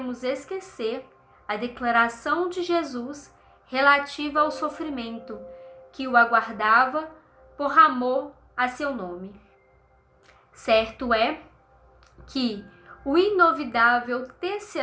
esquecer a declaração de Jesus relativa ao sofrimento que o aguardava por amor a seu nome. Certo é que o inovidável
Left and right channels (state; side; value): identical; both; correlation 1.00